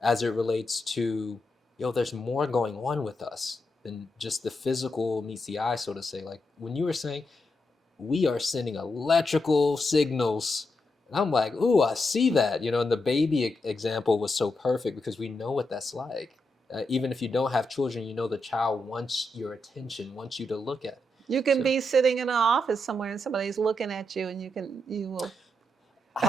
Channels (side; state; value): both; normal; correlation 0.84